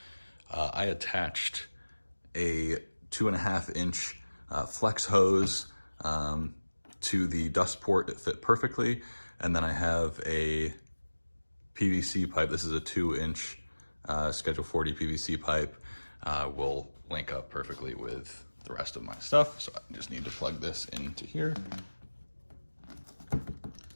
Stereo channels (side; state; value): both; inverted; correlation -1.00